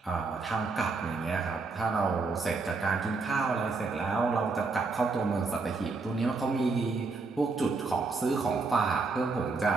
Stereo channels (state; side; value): quieter; left; 4.1 dB